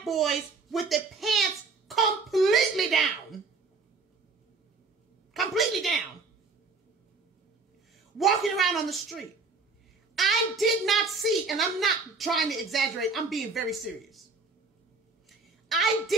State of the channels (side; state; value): left; quieter; 4.2 dB